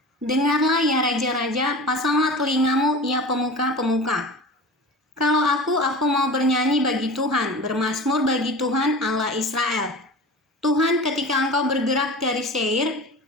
Dengarlah ya raja-raja, pasanglah telingamu ya pemuka-pemuka. Kalau aku mau bernyanyi bagi Tuhan, bermazmur bagi Tuhan Allah Israel. Tuhan, ketika engkau bergerak dari Seir,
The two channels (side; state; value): both; normal; correlation 0.35